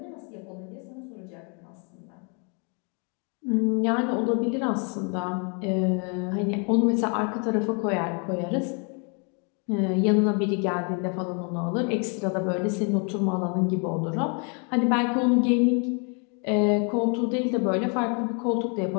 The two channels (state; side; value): quieter; right; 36.7 dB